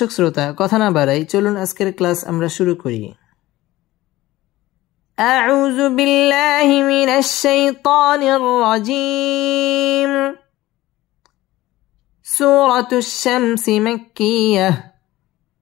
শ্রোতা, কথা না বাড়াই চলুন আজকের ক্লাস আমরা শুরু করি। আউযু বিল্লাহি মিনাশ শাইতানির রাজীম। সূরাতুশ শামস মাক্কিয়াহ।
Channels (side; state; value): right; quieter; 17.1 dB